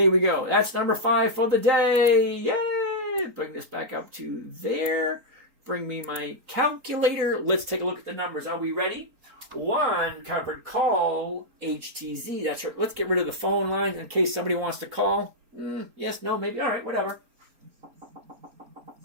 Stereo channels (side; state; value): left; late; 4.1 ms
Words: we go. That's number 5 for the day. Yay! Bring this back up to there. Bring me my calculator. Let's take a look at the numbers. Are we ready? 1 covered call, HTZ. That's right. Let's get rid of the phone lines in case somebody wants to call. Yes, no, maybe. All right, whatever.